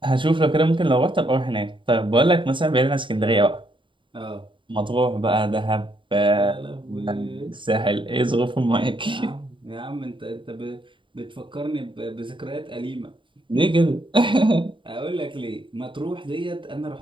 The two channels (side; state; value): left; late; 0.24 ms